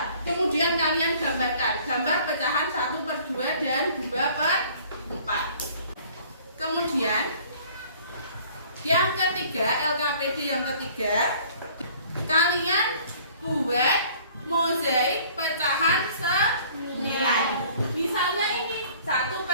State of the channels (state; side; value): inverted; both; correlation -0.53